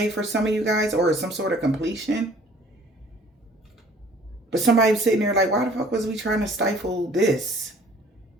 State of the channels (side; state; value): both; normal; correlation 0.54